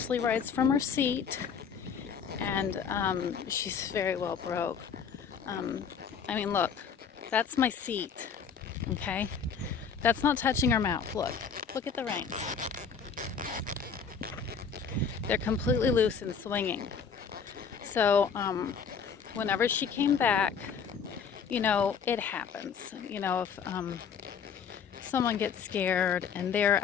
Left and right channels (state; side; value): quieter; right; 6.5 dB